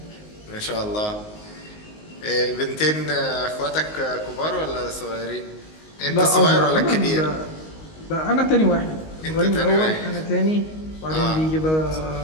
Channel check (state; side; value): late; right; 19 ms